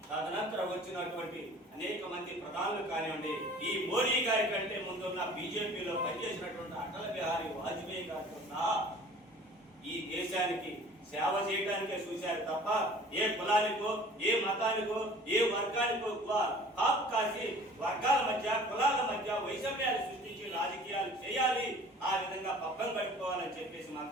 తదనంతరం వచ్చినటువంటి అనేక మంది ప్రధానులు కానివ్వండి, ఈ మోడీ గారి కంటే ముందున్న బీజేపీలో పనిచేసినటువంటి అటల్ బిహారీ వాజ్పేయి గారితో సహా ఈ దేశానికి సేవ చేయడానికే చూశారు తప్ప ఏ కులానికో, ఏ మతానికో, ఏ వర్గానికో కాపు కాసి వర్గాల మధ్య, కులాల మధ్య వైషమ్యాలు సృష్టించి రాజకీయాలు చేయాలి, ఆ విధంగా పబ్బం గడుపుకోవాలని చెప్పేసి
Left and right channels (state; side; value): normal; both; correlation 0.47